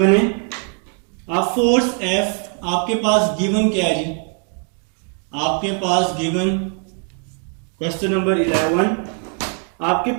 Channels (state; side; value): quieter; left; 39.0 dB